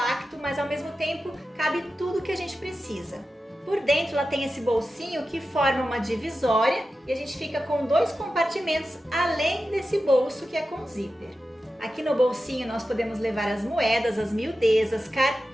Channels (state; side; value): normal; both; correlation 0.92